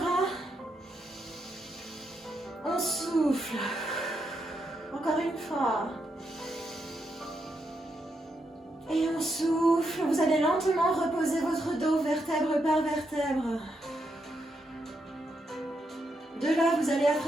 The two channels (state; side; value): normal; both; correlation 0.81